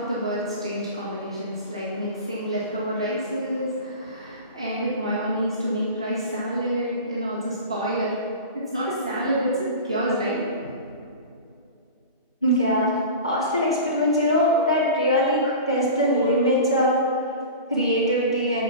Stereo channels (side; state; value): both; inverted; correlation -0.33